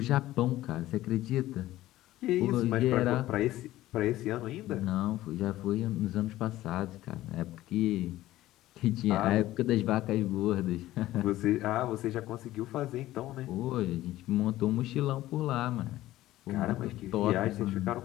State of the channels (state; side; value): quieter; right; 15.5 dB